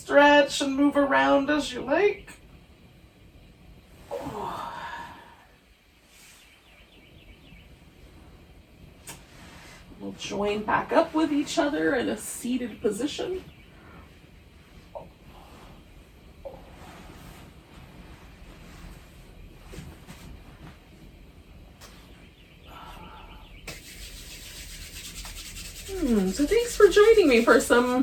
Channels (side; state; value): both; identical; correlation 1.00